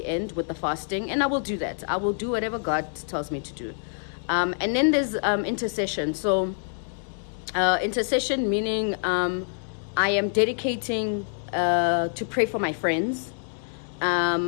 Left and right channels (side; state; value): right; silent; digital silence